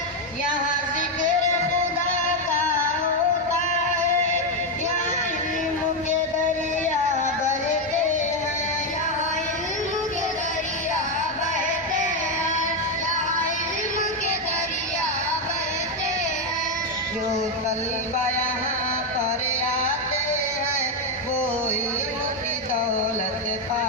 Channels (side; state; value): both; normal; correlation 0.06